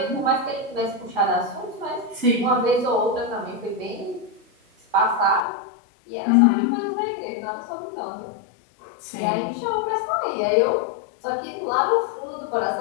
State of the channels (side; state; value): right; drops out; at 5.4 s